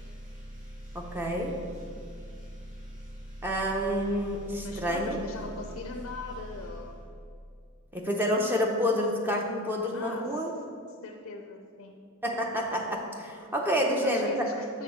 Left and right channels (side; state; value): both; normal; correlation 0.32